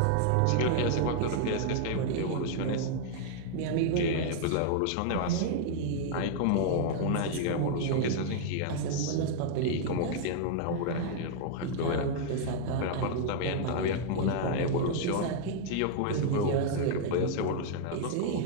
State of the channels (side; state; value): both; different; correlation 0.00